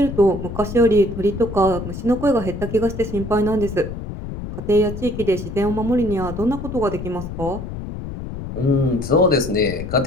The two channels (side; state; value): left; noise; rumble, 8 dB below the sound